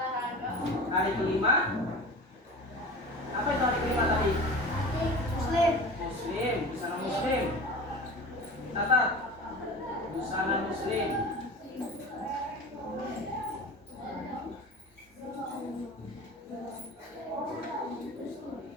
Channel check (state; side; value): normal; both; correlation 0.34